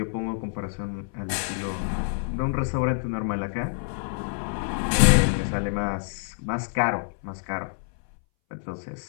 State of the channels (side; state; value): right; silent; 60 dB below the other